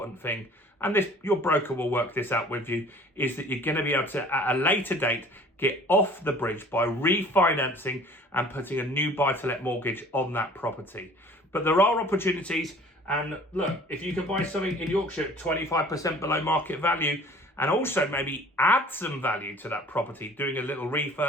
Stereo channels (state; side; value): normal; both; correlation 0.49